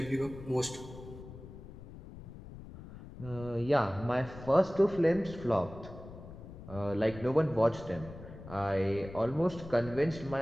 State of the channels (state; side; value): noise; left; rumble, 14 dB below the sound